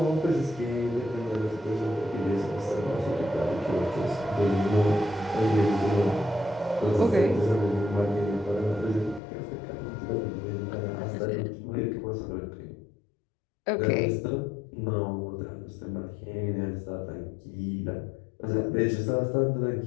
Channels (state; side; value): drops out; right; at 9.2 s